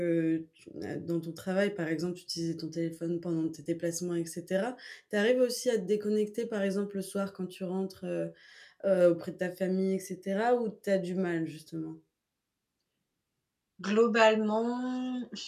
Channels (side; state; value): both; identical; correlation 1.00